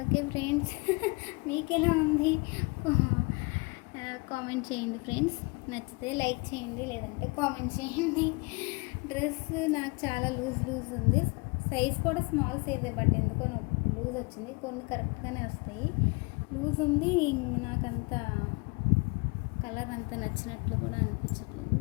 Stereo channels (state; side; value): quieter; right; 28.3 dB